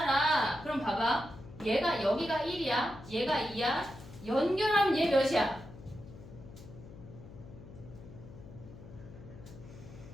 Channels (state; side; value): noise; left; hum, 16 dB below the sound